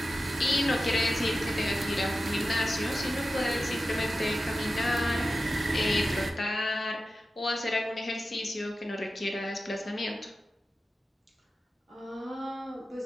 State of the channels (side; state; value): both; normal; correlation 0.93